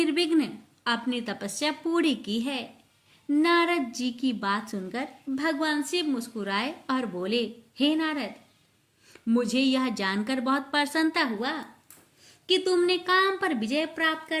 अपनी तपस्या पूरी की है। नारद जी की बात सुनकर भगवान शिव मुस्कुराए और बोले, हे नारद, मुझे यह जानकर बहुत प्रसन्नता हुआ कि तुमने काम पर विजय प्राप्त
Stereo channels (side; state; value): both; identical; correlation 1.00